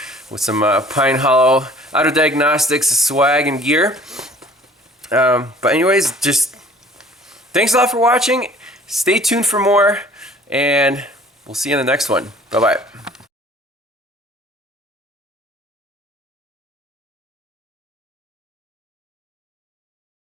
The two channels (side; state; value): both; normal; correlation 0.51